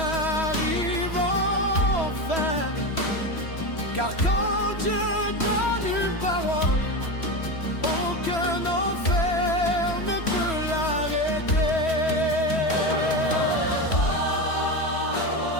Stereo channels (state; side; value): late; right; 3.1 ms